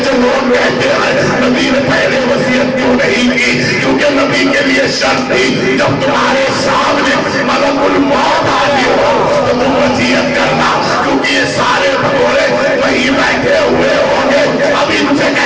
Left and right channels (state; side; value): identical; both; correlation 1.00